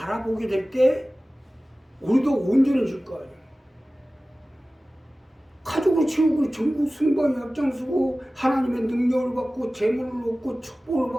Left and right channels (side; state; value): both; normal; correlation 0.97